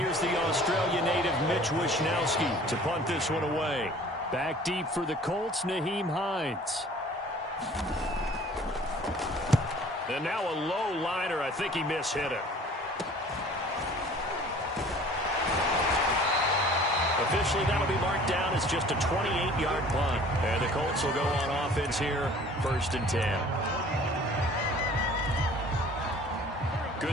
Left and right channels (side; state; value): both; normal; correlation 0.49